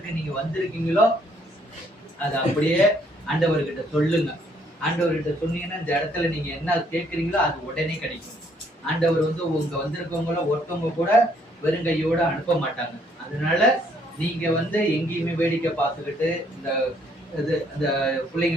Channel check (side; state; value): both; normal; correlation 0.66